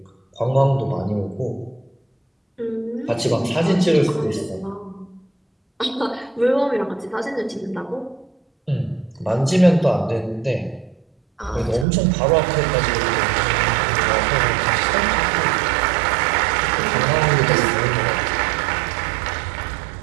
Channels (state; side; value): drops out; left; at 11.9 s